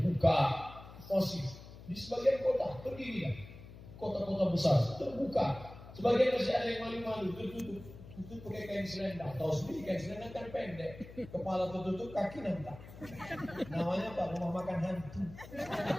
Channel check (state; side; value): noise; left; hum, 16 dB below the sound